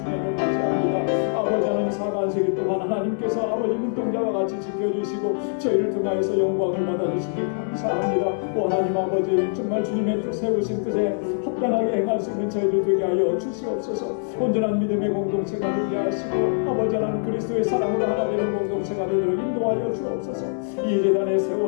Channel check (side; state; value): right; silent; 57 dB below the other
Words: 맞이합니다. 아버지 하나님, 사관세기 동안 하나님께서 아버지 눈동자와 같이 지켜주시고 저희를 통하여서 영광을 받아주시기 감사합니다. 오 하나님 아버지, 정말 주님의 뜻 세우신 뜻에 합당하게 행할 수 있는 저희들 되게 하여 주시옵소서. 온전한 믿음의 공동체가 되게 하시고 아버지 하나님 그리스도의 사랑으로 하나 되는 공동체가 되도록 말씀대로 인도하여 주옵소서. 이 재단에